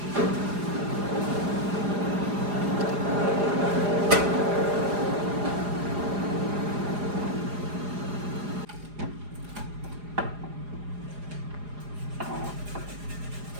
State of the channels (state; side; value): late; left; 4.9 ms